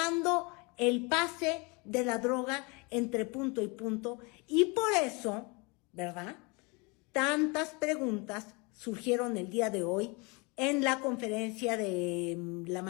el pase de la droga entre punto y punto, y por eso, ¿verdad?, tantas preguntas surgieron el día de hoy en la conferencia de la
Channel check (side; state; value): right; quieter; 29.0 dB